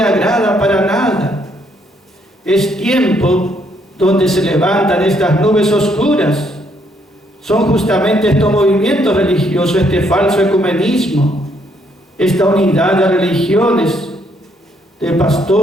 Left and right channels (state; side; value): normal; both; correlation 0.71